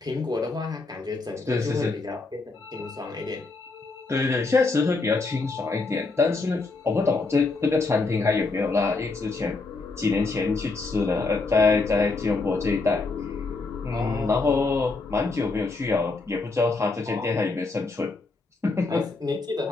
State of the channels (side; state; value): right; quieter; 3.7 dB